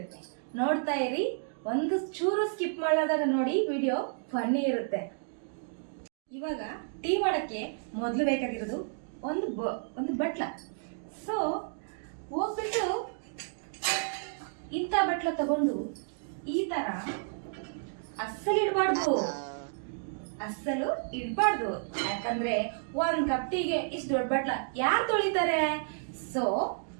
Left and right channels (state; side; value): silent; left; digital silence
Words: ನೋಡ್ತಾ ಇರಿ, ಒಂದು ಚೂರು ಸ್ಕಿಪ್ ಮಾಡಲಾದಾಗ ನೋಡಿ, ವಿಡಿಯೋ ಫನ್ನಿ ಇರುತ್ತೆ. ಇವಾಗ ಟೀ ಮಾಡಕ್ಕೆ ಮೊದಲು ಬೇಕಾಗಿರೋದು ಒಂದು ಬಟ್ಲ. ಸೊ ಹೋಗ್ಬಿಟ್ಟು ಇಂಥ ಬಟ್ಲ ತಗೊಂಡು ಈ ತರ ಅಸ್ಸಲು ಇಡಬಾರ್ದು, ಯಾಕಂದ್ರೆ 1 ಕಪ್ ಟೀಗೆ ಇಷ್ಟು ದೊಡ್ಡ ಬಟ್ಲ ಯಾರು ತೊಳಿತಾರೆ? ಸೊ